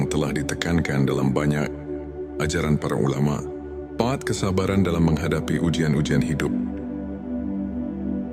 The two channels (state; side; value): identical; both; correlation 1.00